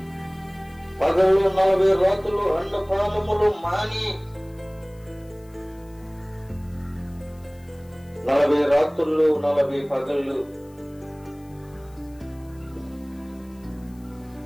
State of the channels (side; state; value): left; noise; hiss, 29 dB below the sound